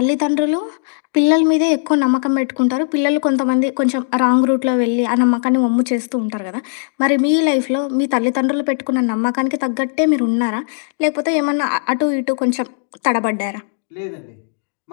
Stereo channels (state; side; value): silent; right; digital silence